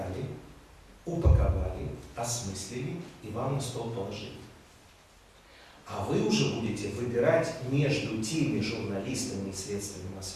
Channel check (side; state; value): both; identical; correlation 1.00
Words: упаковали, осмыслили и вам на стол положили. А вы уже будете выбирать между теми журналистами и средствами